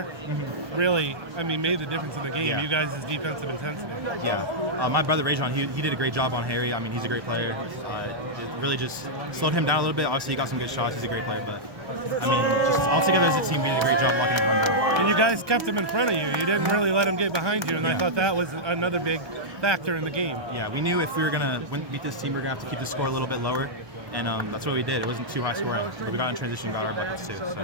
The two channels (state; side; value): late; left; 1.1 ms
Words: really, I mean, made the difference in the game. Yeah. You guys' defensive intensity. Yeah. My brother, Rajon, he did a great job on Harry. I mean, he's a great player. It really just slowed him down a little bit. Obviously, he got some good shots. He's a great player, but, I mean, just altogether as a team, we did a great job blocking him down. And you guys kept him in front of you. You didn't really let him get behind you, and I thought that was another big factor in the game. Yeah, we knew if we were going to beat this team, we were going to have to keep the score a little bit lower, and that's what we did. It wasn't too high scoring. We got in transition, got our buckets too.